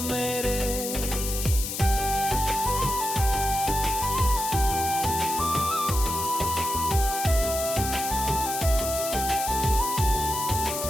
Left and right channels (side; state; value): left; noise; hiss, 5 dB below the sound